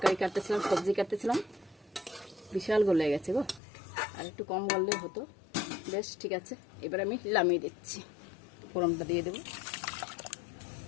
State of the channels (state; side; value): drops out; right; at 3.6 s